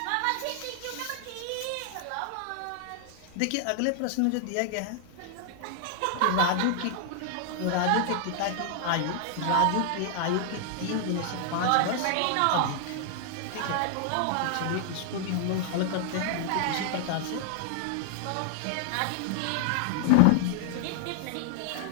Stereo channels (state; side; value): different; both; correlation 0.00